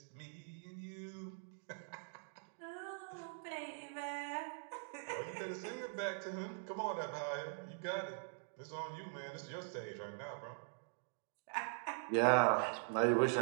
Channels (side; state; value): left; silent; digital silence